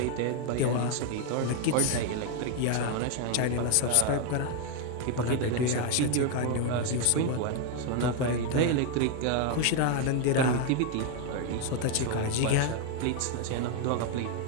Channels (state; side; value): different; both; correlation 0.01